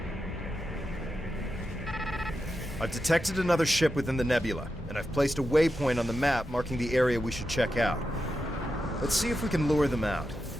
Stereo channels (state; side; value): normal; both; correlation 0.89